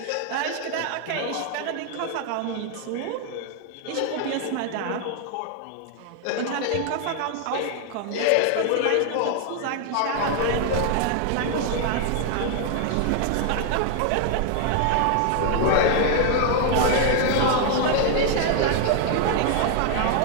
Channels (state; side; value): different; both; correlation 0.00